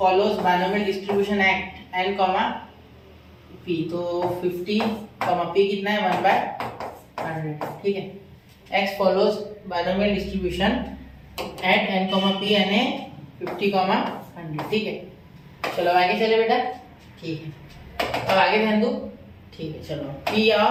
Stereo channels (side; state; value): both; identical; correlation 1.00